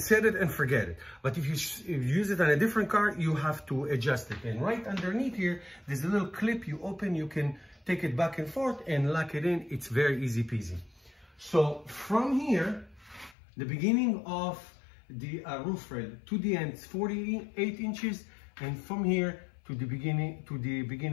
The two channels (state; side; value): drops out; right; at 13.4 s